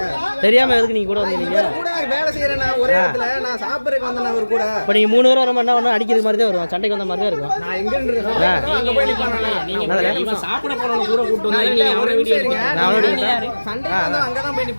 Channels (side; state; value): both; inverted; correlation -1.00